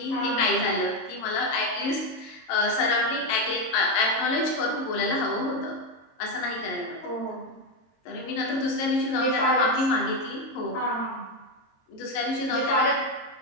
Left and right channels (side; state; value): right; late; 22 ms